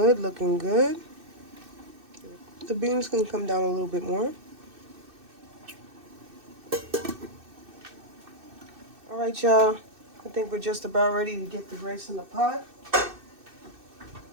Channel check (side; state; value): left; late; 2.6 ms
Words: looking good. The beans can come down a little bit more. All right, y'all. I think we're just about ready to get the rice in the pot.